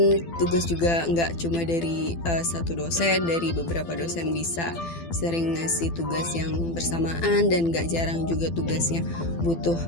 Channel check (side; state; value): right; late; 12 ms